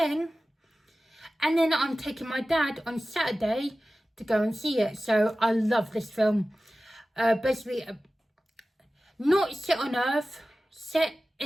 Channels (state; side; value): normal; both; correlation 0.96